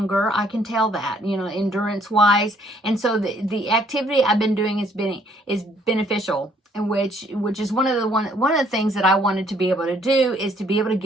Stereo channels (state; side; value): normal; both; correlation 0.64